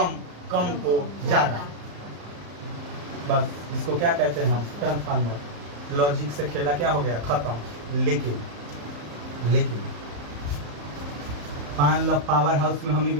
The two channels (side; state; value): left; late; 35 ms